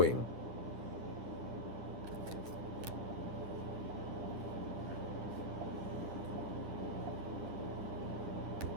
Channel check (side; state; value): left; late; 9.8 ms